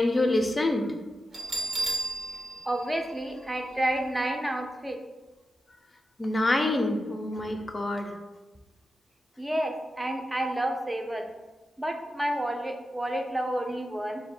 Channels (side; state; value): both; normal; correlation 0.90